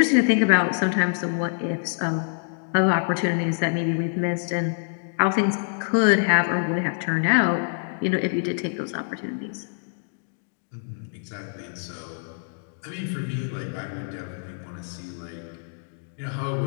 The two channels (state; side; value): silent; right; digital silence